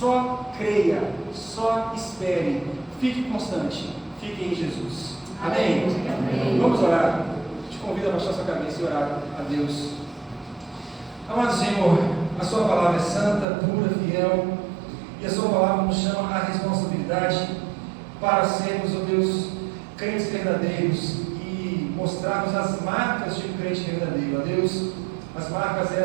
creia, só espere, fique constante, fique em Jesus. Amém? Amém. Vamos orar. Te convido a baixar sua cabeça e orar a Deus. Amado Senhor, a sua palavra é santa, pura, fiel, e a sua palavra nos chama à responsabilidade para sermos, ó Deus, crentes verdadeiros e mostrarmos as marcas de um crente verdadeiro. Ó Deus, as marcas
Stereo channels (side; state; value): left; drops out; at 13.5 s